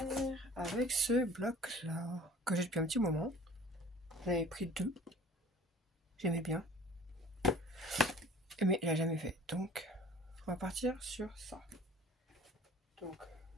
avec ce bloc là que j'ai depuis un petit moment. J'en avais pris 2, j'aimais bien, mais il n'a jamais fait, donc on va partir sur ça. Donc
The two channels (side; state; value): both; normal; correlation 0.47